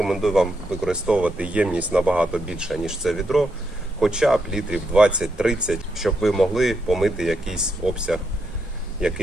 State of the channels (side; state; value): both; normal; correlation 0.81